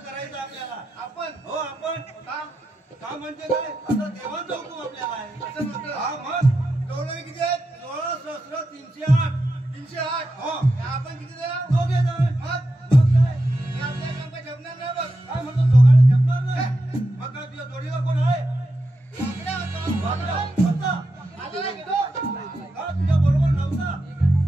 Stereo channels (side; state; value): both; normal; correlation 0.88